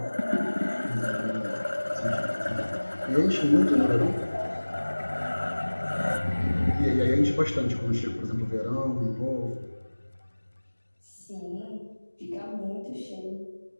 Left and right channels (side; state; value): both; inverted; correlation -1.00